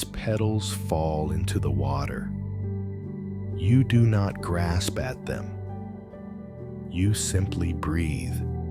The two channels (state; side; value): identical; both; correlation 1.00